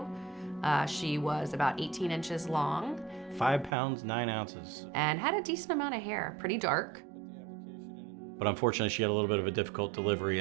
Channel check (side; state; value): left; drops out; at 3.7 s